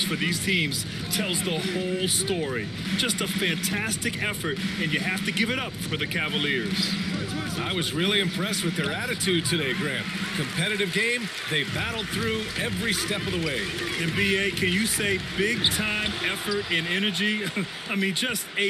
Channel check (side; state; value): both; identical; correlation 1.00